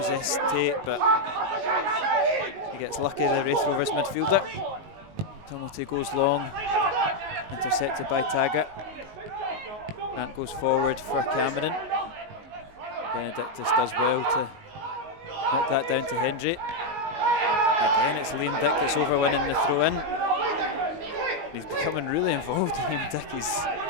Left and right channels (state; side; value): late; left; 19 ms